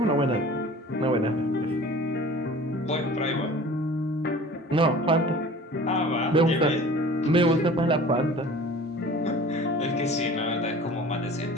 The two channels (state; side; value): normal; both; correlation 0.43